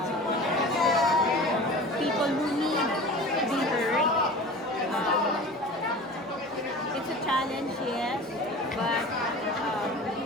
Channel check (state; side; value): normal; both; correlation 0.37